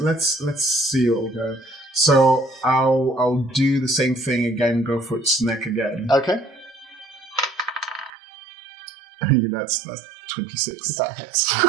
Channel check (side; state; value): left; drops out; at 8.1 s